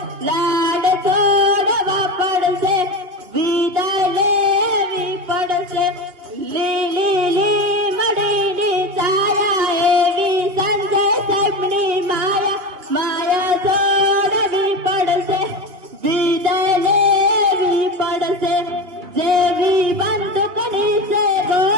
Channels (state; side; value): late; left; 3.3 ms